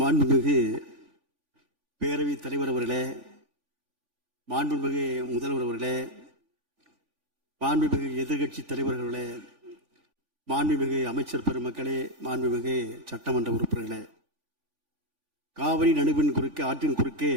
பேரவைத் தலைவர் அவர்களே, மாண்புமிகு முதல்வர் அவர்களே, மாண்புமிகு எதிர்கட்சி தலைவர்களே, மாண்புமிகு அமைச்சர் பெருமக்களே, மாண்புமிகு சட்டமன்ற உறுப்பினர்களே, காவிரி நடுவின் குறுக்கே ஆற்றின் குறுக்கே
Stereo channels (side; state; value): left; late; 3.5 ms